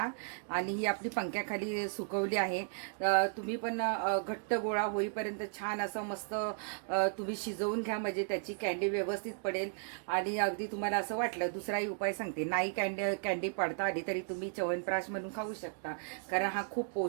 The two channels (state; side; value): silent; left; digital silence